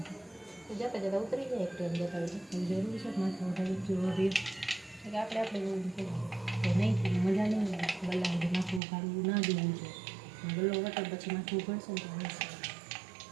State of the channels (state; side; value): drops out; left; at 8.8 s